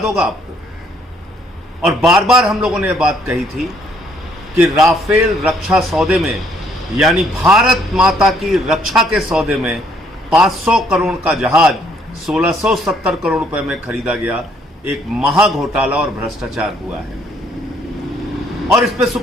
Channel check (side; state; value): both; normal; correlation 0.66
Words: होगा आपको, और बार बार हम लोगों ने यह बात कही थी कि राफेल रक्षा सौदे में, यानी भारत माता की रक्षा के सौदे में 500 करोड़ का जहाज 1670 करोड़ रुपए में खरीदा गया। एक महा घोटाला और भ्रष्टाचार हुआ है, और इस पे